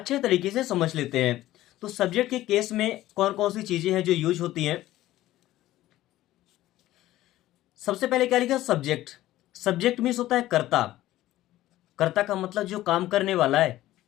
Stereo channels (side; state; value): right; quieter; 15.2 dB